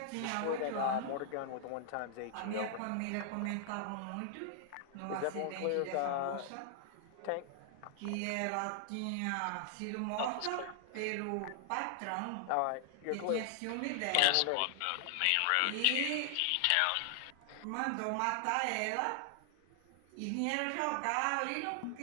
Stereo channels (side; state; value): both; different; correlation 0.00